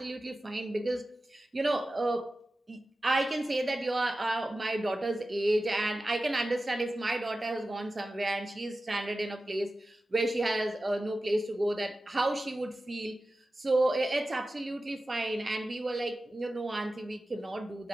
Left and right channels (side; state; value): both; normal; correlation 0.94